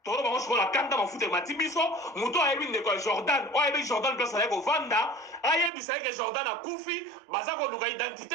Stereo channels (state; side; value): drops out; left; at 5.7 s